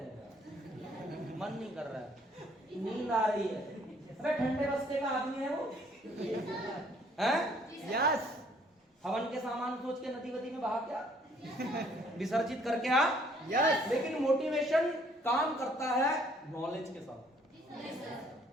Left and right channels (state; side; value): normal; both; correlation 0.62